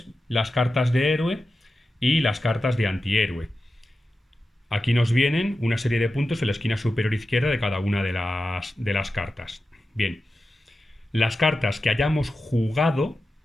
las cartas de héroe y las cartas de antihéroe. Aquí nos vienen una serie de puntos en la esquina superior izquierda de cada una de las cartas. Bien, las cartas que hayamos jugado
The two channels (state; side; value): normal; both; correlation 0.92